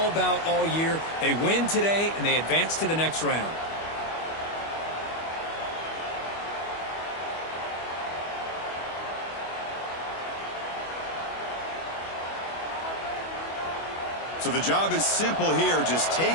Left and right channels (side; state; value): right; late; 25 ms